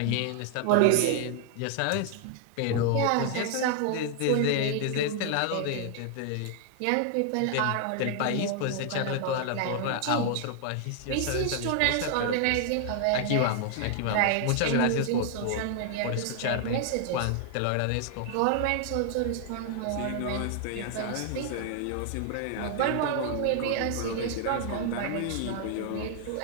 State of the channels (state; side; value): different; both; correlation 0.00